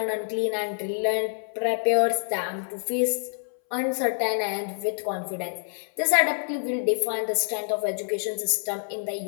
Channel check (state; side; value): silent; right; 60 dB below the other